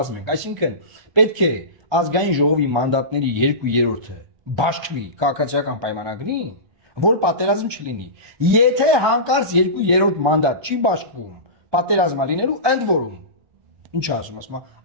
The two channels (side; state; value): left; late; 1.2 ms